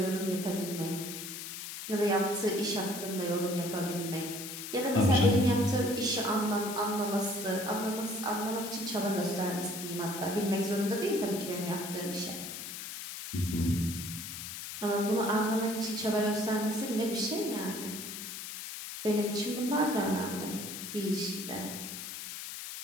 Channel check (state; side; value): noise; left; hiss, 8 dB below the sound